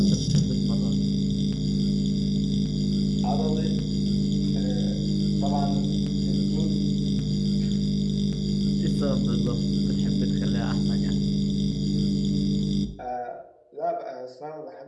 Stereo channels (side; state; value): both; identical; correlation 1.00